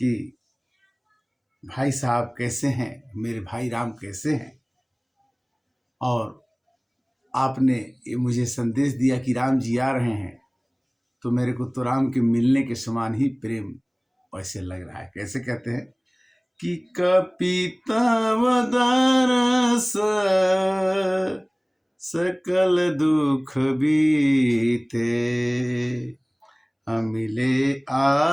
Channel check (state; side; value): identical; both; correlation 1.00